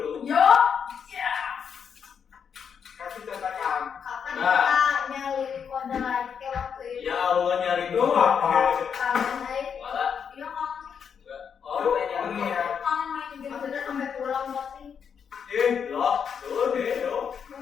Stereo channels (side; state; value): right; quieter; 7.1 dB